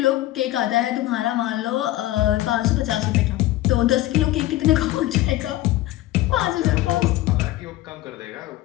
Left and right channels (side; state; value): right; quieter; 16.0 dB